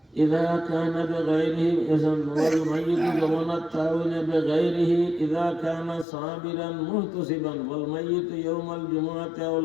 إذا كان بغيره إذن والميت زمن التعاون بغيره إذا كان صابرا محتسبا والميت يوم الجمعة أو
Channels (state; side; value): drops out; right; at 6.1 s